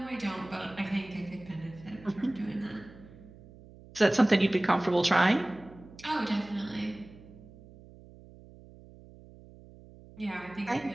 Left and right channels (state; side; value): noise; right; hum, 20 dB below the sound